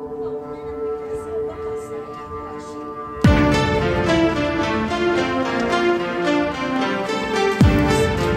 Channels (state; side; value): identical; both; correlation 1.00